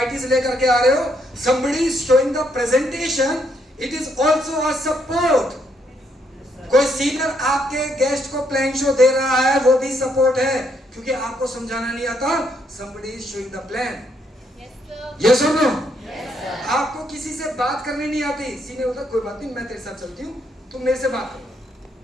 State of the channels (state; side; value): normal; both; correlation 0.74